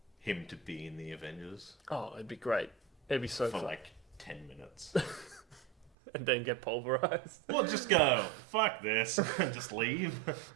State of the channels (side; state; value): left; drops out; at 5.9 s